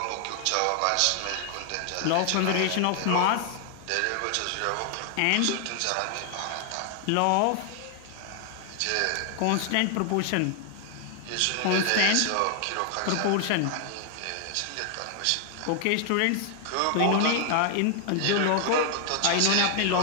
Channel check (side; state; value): both; different; correlation 0.00